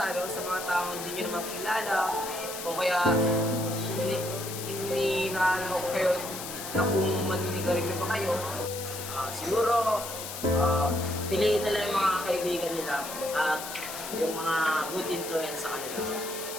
sa mga taong hindi nyo naman kilala, o kaya hindi naalala ko kayo na kung maninigarilyo ba kayo, siguro piliin nila yung mga kaibigan nila at yung mga good influence sa kanila.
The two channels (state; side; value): noise; left; hiss, 8 dB below the sound